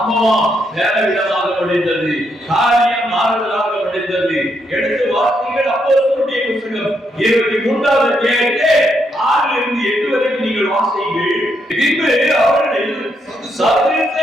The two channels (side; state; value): both; normal; correlation 0.77